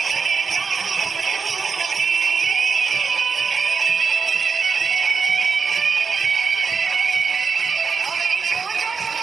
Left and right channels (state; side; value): quieter; left; 5.5 dB